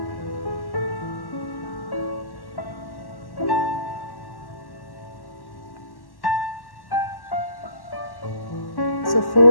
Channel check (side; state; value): right; late; 1.1 ms